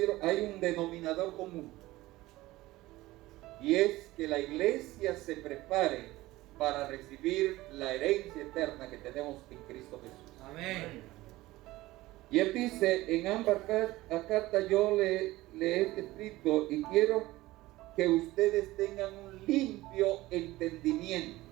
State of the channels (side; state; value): left; quieter; 18.2 dB